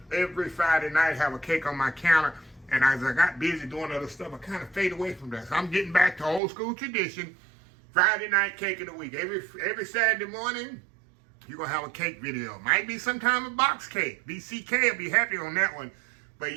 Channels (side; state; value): left; drops out; at 6.4 s